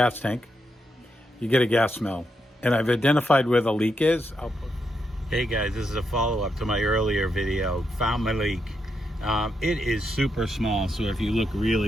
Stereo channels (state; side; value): normal; both; correlation 0.82